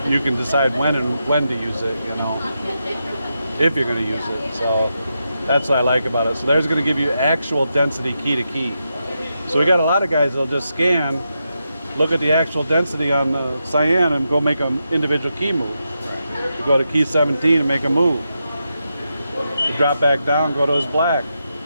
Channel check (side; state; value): both; inverted; correlation -0.86